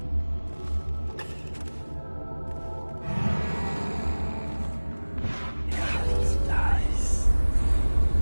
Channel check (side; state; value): both; inverted; correlation -1.00